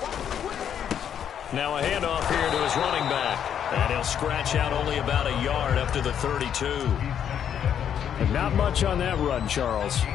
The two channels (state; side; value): quieter; right; 8.9 dB